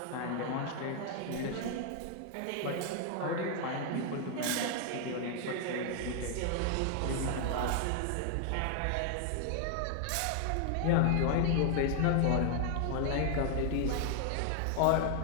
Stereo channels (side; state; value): both; different; correlation 0.00